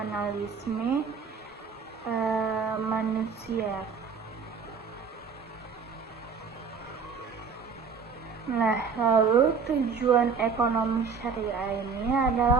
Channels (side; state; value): left; quieter; 5.5 dB